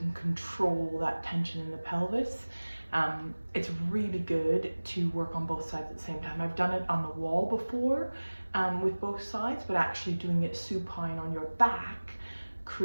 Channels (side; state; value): both; inverted; correlation -1.00